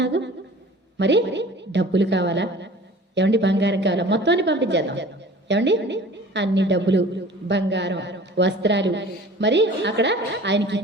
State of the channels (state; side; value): normal; both; correlation 0.45